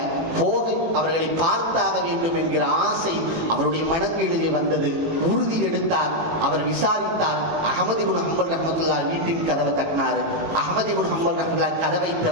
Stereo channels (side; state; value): left; late; 18 ms